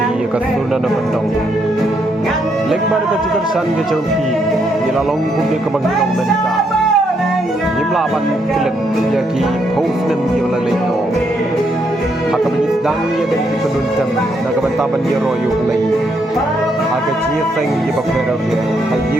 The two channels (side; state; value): both; normal; correlation 0.76